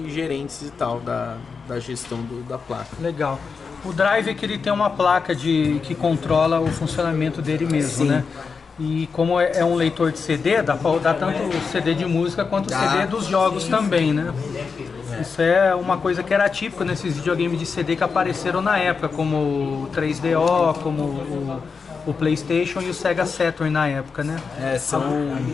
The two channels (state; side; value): quieter; right; 5.2 dB